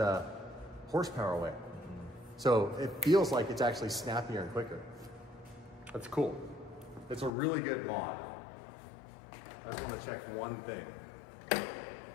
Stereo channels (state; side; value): drops out; right; at 7.3 s